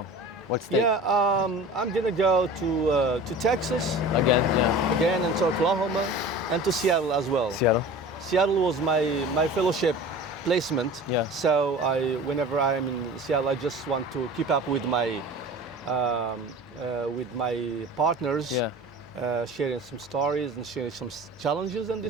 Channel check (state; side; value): normal; both; correlation 0.39